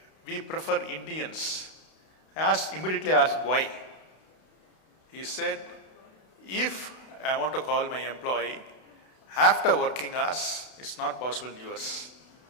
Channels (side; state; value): right; late; 32 ms